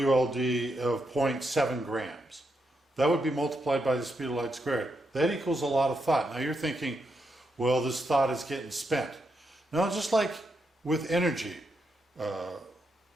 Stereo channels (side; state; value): both; normal; correlation 0.82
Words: of 0.7 grams. That would be multiplied by the speed of light squared. That equals a lot of thought. Now you're thinking, well, this thought is getting spent. No, just like with energy